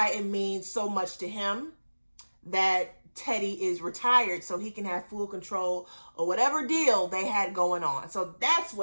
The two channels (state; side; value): inverted; both; correlation -1.00